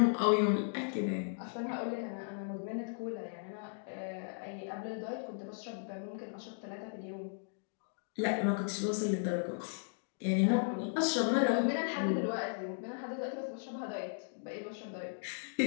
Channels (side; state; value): right; silent; digital silence